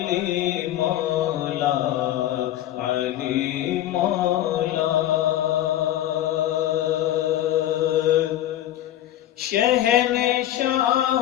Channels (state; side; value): quieter; right; 13.0 dB